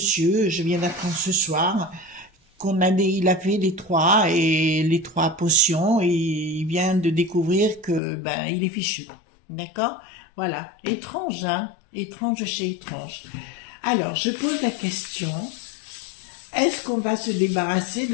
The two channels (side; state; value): right; drops out; at 8.0 s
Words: je viens d'apprendre ce soir, il a fait les trois potions, et il vient de découvrir que ben il est fichu, d'accord? Voilà, étrange, étrange chez étrange. Alors, je pose la question, est-ce qu'on va se débarrasser